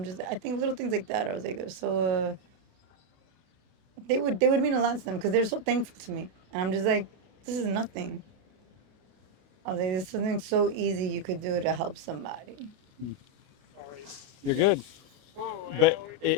I think little things like that, I was like, so, they would mean a lot to them because they're so thankful to me. And I'm just like, this is nothing. I was like, this is something so easy you could do to help somebody. You're good. But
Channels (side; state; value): left; late; 33 ms